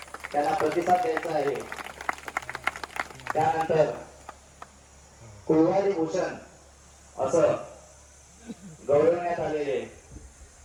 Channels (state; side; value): identical; both; correlation 1.00